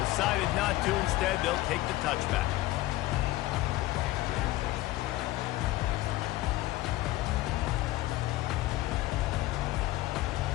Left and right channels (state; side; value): quieter; right; 17.0 dB